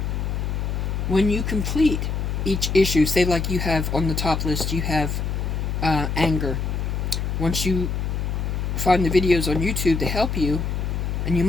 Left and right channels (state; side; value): noise; left; hum, 1 dB below the sound